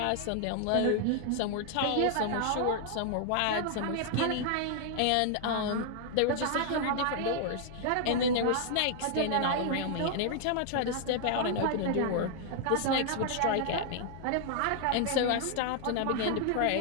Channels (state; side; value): different; both; correlation 0.00